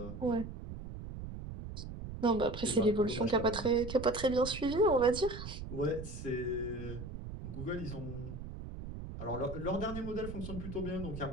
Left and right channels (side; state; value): right; noise; rumble, 9 dB below the sound